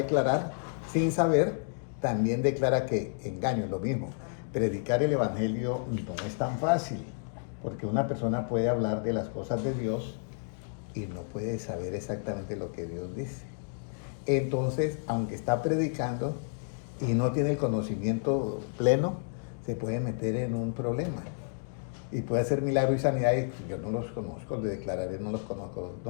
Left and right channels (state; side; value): silent; right; digital silence